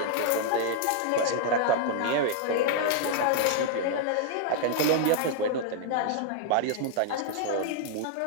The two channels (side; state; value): both; different; correlation -0.01